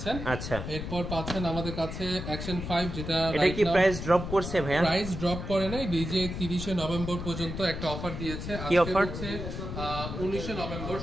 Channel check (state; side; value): noise; left; rumble, 6 dB below the sound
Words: আচ্ছা, এরপর পাচ্ছেন আমাদের কাছে অ্যাকশন 5, যেটা এটা কি প্রাইস ড্রপ করছে ভাইয়া? প্রাইস ড্রপ করে নাই, ডিজে 30 নভেম্বর পর্যন্ত একটা অফার দিয়েছে। কি অফার? হচ্ছে 19 নভেম্বর,